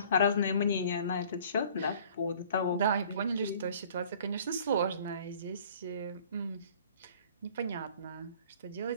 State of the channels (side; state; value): both; inverted; correlation -0.51